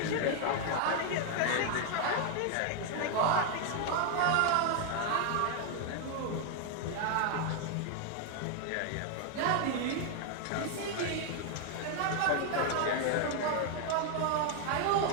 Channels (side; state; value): both; different; correlation 0.00